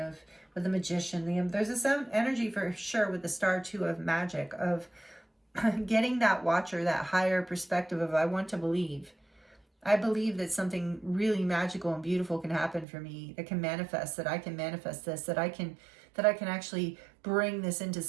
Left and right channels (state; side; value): drops out; left; at 12.9 s